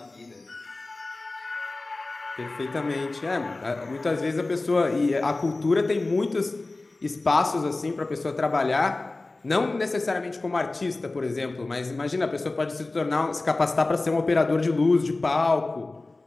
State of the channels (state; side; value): quieter; right; 3.2 dB